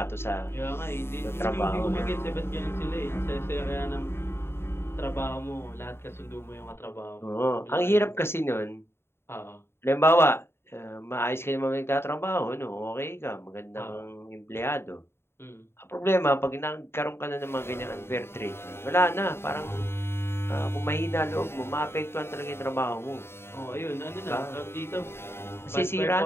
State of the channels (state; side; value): late; right; 0.12 ms